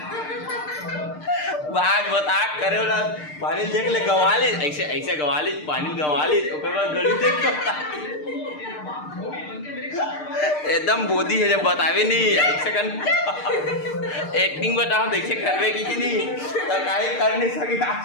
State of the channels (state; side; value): late; right; 6.6 ms